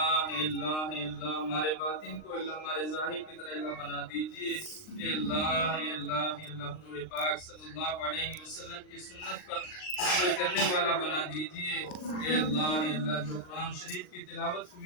ہمارے باطن کو اللہ ہمارے ظاہر کی طرح اللہ بنا دیجئے، اے اللہ حضور پاک صلی اللہ علیہ وسلم کی سنت پر عمل کرنے والا بنا دیجئے، اے اللہ جو قرآن شریف کی تلاوت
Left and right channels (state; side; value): late; right; 39 ms